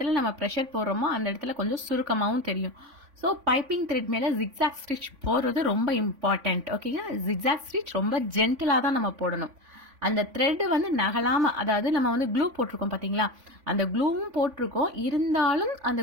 நம்ம ப்ரெஷர் போடுறோமோ அந்த இடத்துல கொஞ்சம் சுருக்கமாகவும் தெரியும். ஸோ பைப்பிங் த்ரெட் மேலே ஜிக்ஸாக் ஸ்டிச் போடுறது ரொம்ப இம்பார்ட்டண்ட். ஓகேங்களா? ஜிக்ஸாக் ஸ்டிச் ரொம்ப ஜென்டிலாக தான் நம்ம போடணும். அந்த த்ரெட்டு வந்து நகலாமல், அதாவது நம்ம வந்து க்ளூ போட்டிருக்கோம் பார்த்தீங்களா, அந்த க்ளூவும் போட்டிருக்கோம், இருந்தாலும் அந்த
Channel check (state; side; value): late; left; 3.5 ms